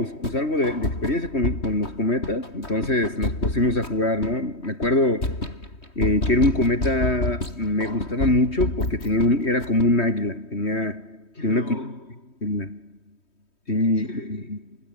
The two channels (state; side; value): late; right; 3.2 ms